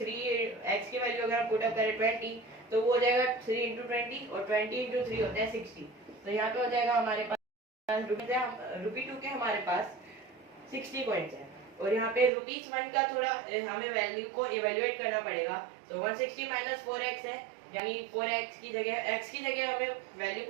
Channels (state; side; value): drops out; left; at 12.3 s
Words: 3x की वैल्यू अगर हम पुट अप करें 20 तो वो हो जाएगा 3 इंटू 20, और 20 इंटू 3 होता है 60। तो यहाँ पे हो जाएगा हमारे पास ₹2 के हमारे पास 60 कॉइन्स है। और यहाँ पे ₹1 का थोड़ा हमें वैल्यू को इवेल्युएट करना पड़ेगा। तो 160 माइनस 4x है, यानी 4x की जगह x की जगह हमें वैल्यू